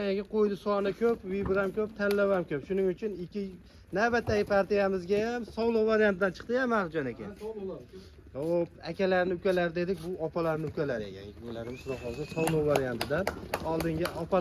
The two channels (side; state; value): both; identical; correlation 1.00